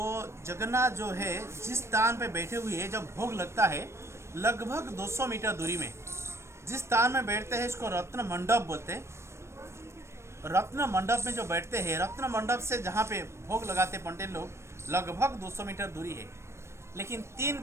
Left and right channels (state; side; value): late; left; 0.13 ms